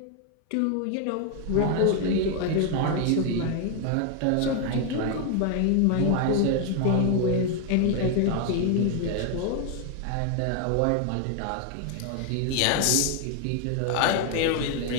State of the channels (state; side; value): different; both; correlation 0.00